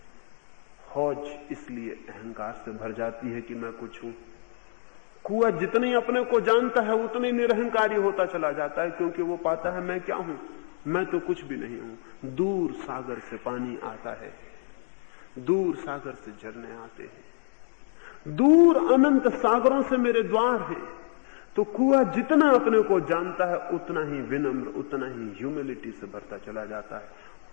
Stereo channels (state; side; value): silent; right; digital silence